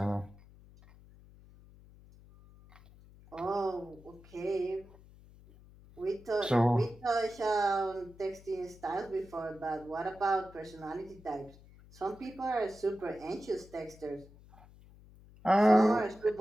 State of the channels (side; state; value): left; noise; hum, 23 dB below the sound